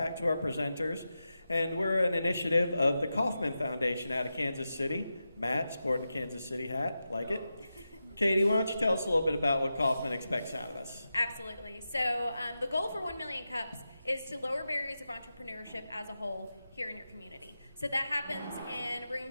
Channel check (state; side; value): inverted; both; correlation -0.91